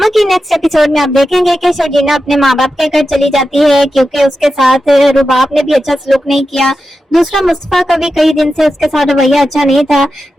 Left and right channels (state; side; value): normal; both; correlation 0.91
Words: की next episode में आप देखेंगे कि शर्जीना अपने माँ बाप के घर चली जाती है क्योंकि उसके साथ रुबाब ने भी अच्छा सलूक नहीं किया। दूसरा, मुस्तफा का भी कई दिन से उसके साथ रवैया अच्छा नहीं था,